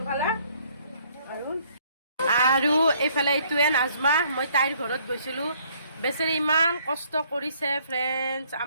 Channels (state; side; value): inverted; both; correlation -0.63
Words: আৰু এইফালে এইটোৱে নাজমা, মই তাইৰ ঘৰত গৈছিলোঁ। বেচেৰি ইমান কষ্ট কৰিছে ফ্ৰেণ্ডছ,